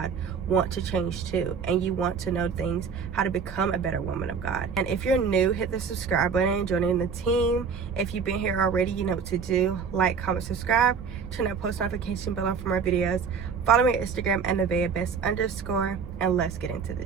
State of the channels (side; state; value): left; quieter; 6.0 dB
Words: want to change too, and you want to know things, how to become a better woman of God. And if you're new, hit the subscribe button and join in the team. If you've been here already, you know what to do. Like, comment, subscribe, turn that post notification bell on for more videos. Follow me on Instagram at NevaehBest_, and let's get into